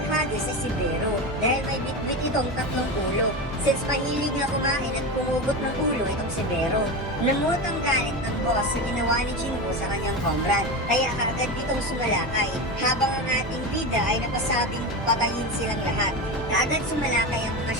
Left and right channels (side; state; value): both; normal; correlation 0.21